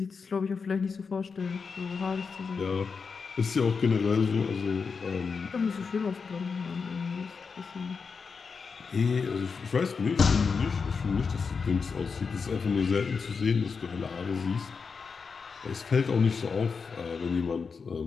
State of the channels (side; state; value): right; quieter; 5.3 dB